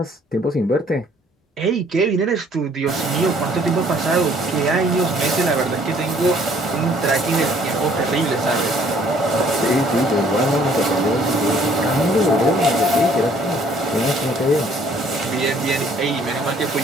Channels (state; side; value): normal; both; correlation 0.60